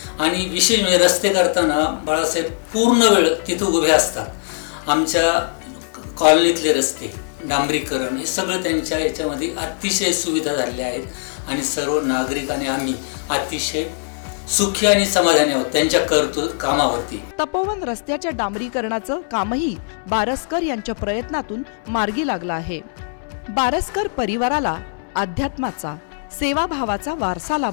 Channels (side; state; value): right; silent; digital silence